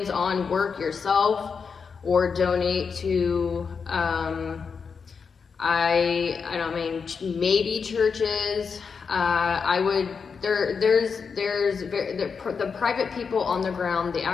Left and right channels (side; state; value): right; quieter; 5.7 dB